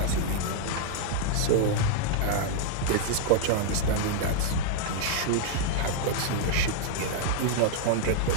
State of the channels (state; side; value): different; both; correlation -0.01